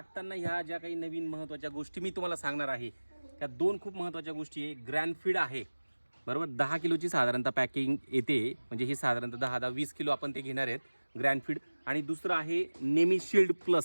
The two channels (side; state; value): both; inverted; correlation -1.00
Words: ह्या ज्या काही नवीन महत्त्वाच्या गोष्टी मी तुम्हाला सांगणार आहे, त्या दोन खूप महत्त्वाच्या गोष्टी आहे. ग्रॅनफीड आहे, बरोबर. 10 किलोची साधारणतः पॅकिंग येते, म्हणजे हे साधारणतः 10-20 किलो आपण ते घेणार आहेत ग्रॅनफीड. आणि दुसरं आहे नेमीशिल्ड